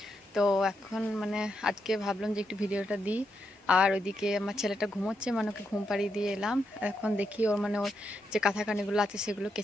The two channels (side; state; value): both; normal; correlation 0.82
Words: তো এখন মানে আজকে ভাবলাম যে একটু ভিডিওটা দিই। আর ওইদিকে আমার ছেলেটা ঘুমোচ্ছে, মানে ওকে ঘুম পাড়িয়ে দিয়ে এলাম। এখন দেখি ওর মানে ওর যে কাঁথা কানিগুলো আছে সেগুলো